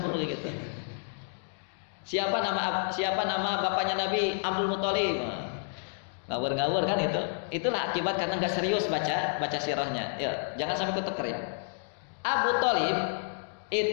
gitu. Siapa nama bapaknya Nabi? Abdul Muthalib. Ngawur-ngawur kan itu. Itulah akibat karena nggak serius baca sirahnya. Ya, jangan sampai ketuker ya. Abu Thalib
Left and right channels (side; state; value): right; silent; digital silence